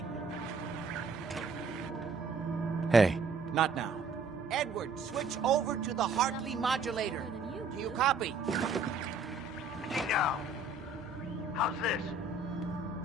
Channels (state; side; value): quieter; left; 3.9 dB